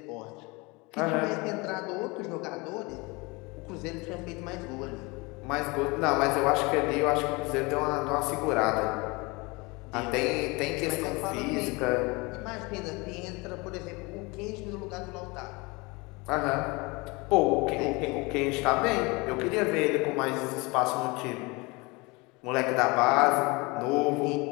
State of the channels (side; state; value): right; quieter; 26.0 dB